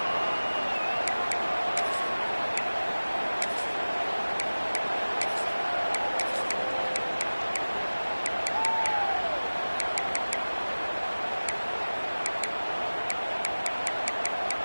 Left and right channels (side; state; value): both; inverted; correlation -1.00